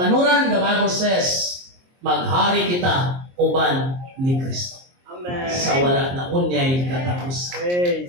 the Bible says, maghari kita uban ni Kristo. Amen. Sa wala na unyay katapusan.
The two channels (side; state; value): left; late; 23 ms